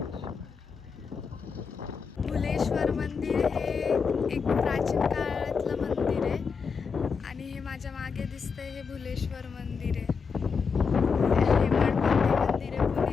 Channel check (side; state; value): right; quieter; 5.6 dB